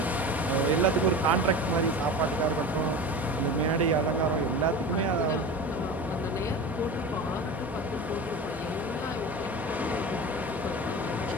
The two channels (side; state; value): both; normal; correlation 0.31